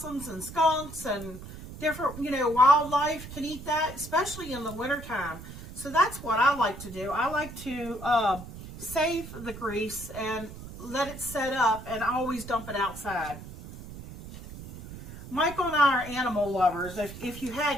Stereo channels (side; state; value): right; noise; rumble, 13 dB below the sound